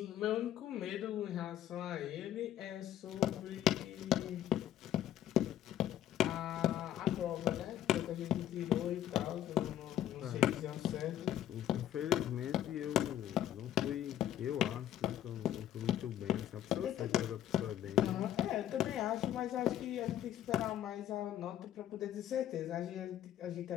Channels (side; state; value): right; quieter; 11.5 dB